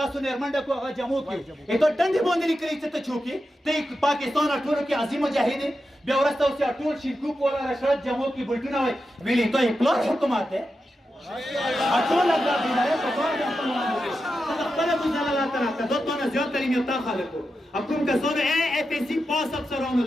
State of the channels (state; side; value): normal; both; correlation 0.89